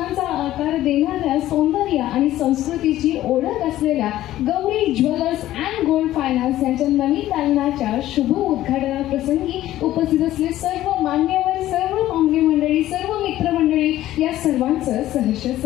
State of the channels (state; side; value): quieter; right; 14.2 dB